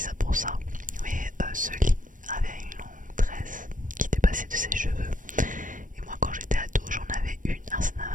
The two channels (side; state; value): left; late; 0.38 ms